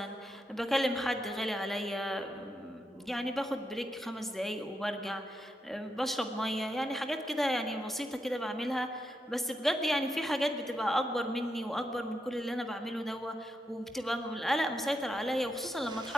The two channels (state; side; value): normal; both; correlation 0.83